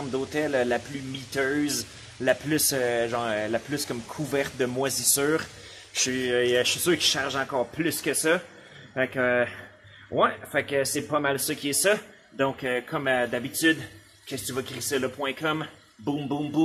d'hôtel la plus miteuse, la plus la plus comme couverte de moisissures. Je suis sûr qu'ils chargent encore plus que ça. Fait que fait que c'est pas mal ça qui est ça. Donc comme d'habitude, qu'est-ce que tu vas crisser le .com? Boum boum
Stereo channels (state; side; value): identical; both; correlation 1.00